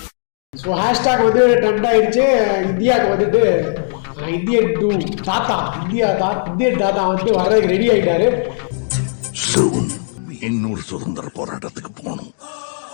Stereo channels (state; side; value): silent; right; 68 dB below the other